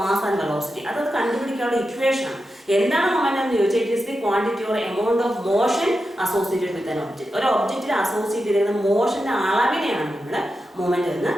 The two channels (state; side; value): normal; both; correlation 0.89